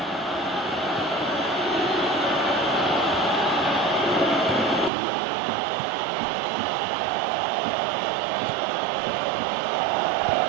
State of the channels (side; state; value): left; drops out; at 4.9 s